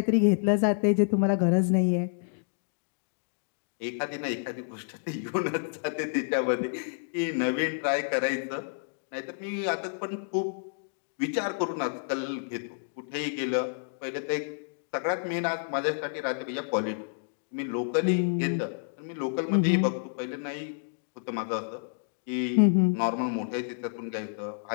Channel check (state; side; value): silent; right; digital silence